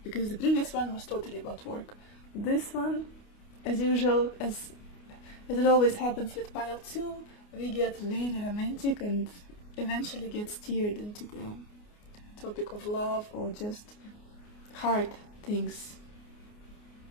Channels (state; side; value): late; right; 29 ms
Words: because the previous one was totally about work. This one, as usual, as it always happens with pile 2, we get very romantic and eventually get steered into the topic of love or just heart things,